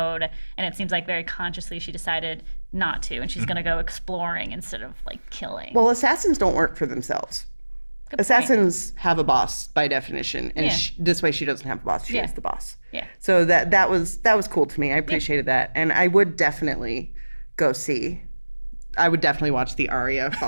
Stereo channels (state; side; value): inverted; both; correlation -1.00